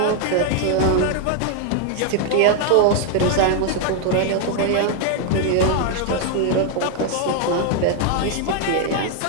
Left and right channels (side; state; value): both; different; correlation 0.00